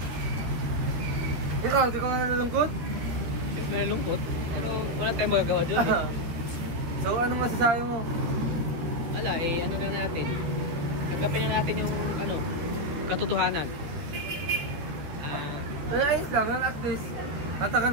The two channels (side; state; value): left; late; 13 ms